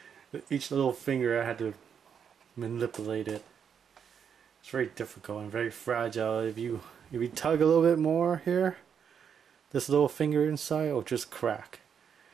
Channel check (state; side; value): quieter; left; 7.5 dB